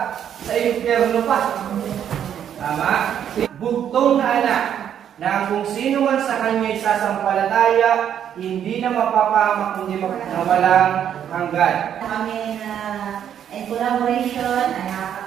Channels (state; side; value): quieter; left; 9.4 dB